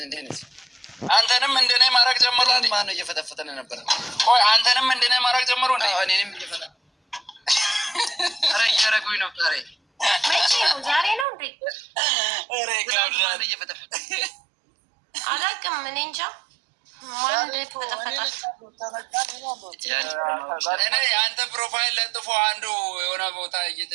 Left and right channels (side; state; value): left; drops out; at 11.2 s